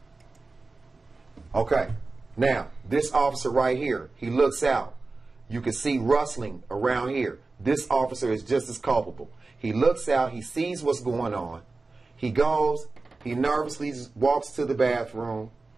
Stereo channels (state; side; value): quieter; left; 3.6 dB